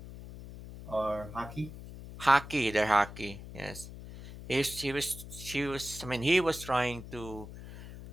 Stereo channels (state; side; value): noise; left; hum, 13 dB below the sound